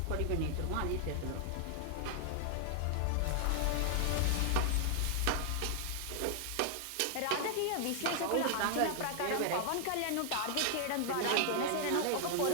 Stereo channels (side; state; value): both; different; correlation 0.00